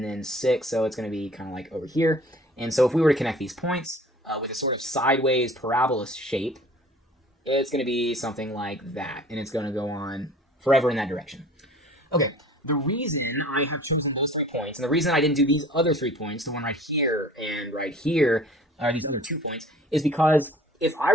then 6. So it's going to be kind of like over here. And so if we were to connect these points with a sort of sideways parabola shape, it's going to be something like that. And it's going to go on forever in that direction. Okay, the reason I have chosen those 3 points, and the reason I didn't do these other 3 points, the one right here and right here, these other 2 points, is because if I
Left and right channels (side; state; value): both; normal; correlation 0.48